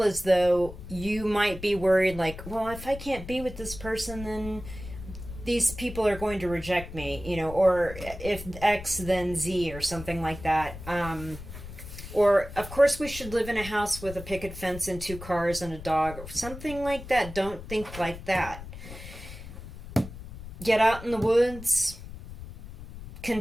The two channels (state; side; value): noise; left; rumble, 12 dB below the sound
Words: as though you might be worried, like, well, if I can't be with this person, then these people are going to reject me, or if X, then Z, or something like that. Or, of course, we should live in a house with a picket fence and 2 cars and a dog, or something like that. Don't think like that. Get out in the woods.